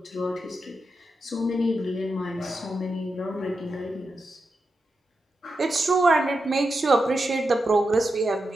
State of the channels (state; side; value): normal; both; correlation 0.88